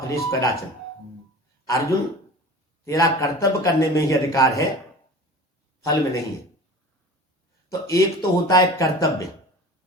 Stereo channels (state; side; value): normal; both; correlation 0.38